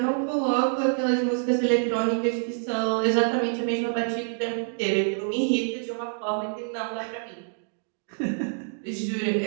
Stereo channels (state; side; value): silent; left; 61 dB below the other